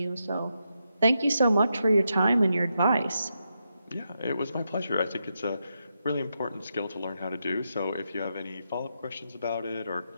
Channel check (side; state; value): both; inverted; correlation -0.84